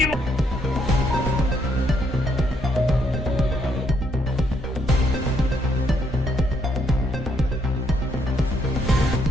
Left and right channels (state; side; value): normal; both; correlation 0.72